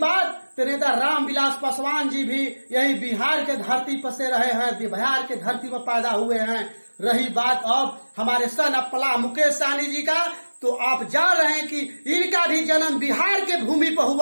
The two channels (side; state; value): both; inverted; correlation -1.00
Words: तो नेता रामविलास पासवान जी भी यही बिहार के धरती पर से रहे हैं, बिहार के धरती पर पैदा हुए हैं। रही बात अब हमारे सन ऑफ मल्लाह मुकेश सहनी जी का, तो आप जान रहे हैं कि इनका भी जन्म बिहार के भूमि पर